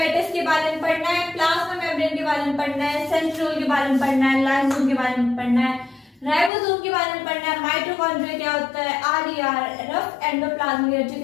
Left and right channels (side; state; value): right; drops out; at 6.5 s